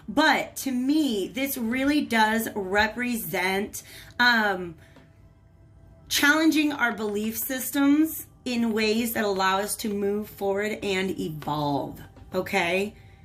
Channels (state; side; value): identical; both; correlation 1.00